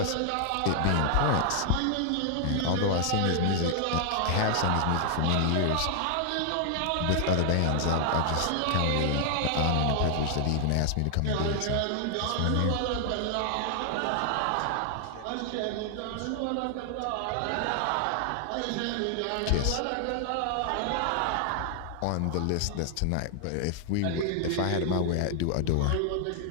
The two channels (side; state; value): both; different; correlation 0.00